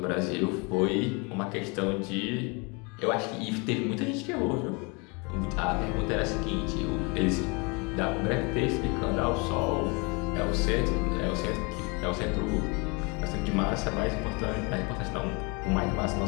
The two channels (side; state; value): right; quieter; 30.5 dB